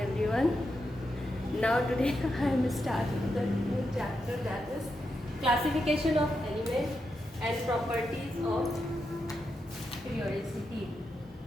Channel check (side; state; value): both; normal; correlation 0.85